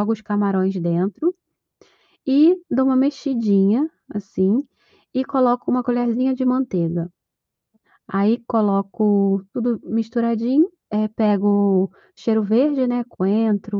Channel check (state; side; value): identical; both; correlation 1.00